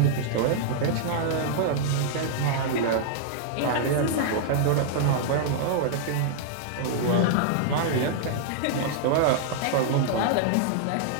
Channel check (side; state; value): both; different; correlation -0.01